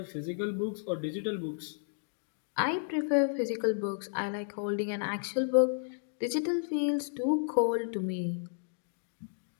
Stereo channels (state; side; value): silent; right; digital silence